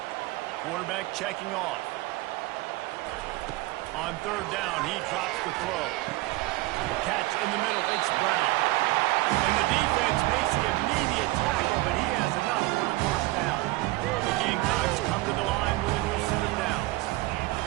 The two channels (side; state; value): left; quieter; 20.0 dB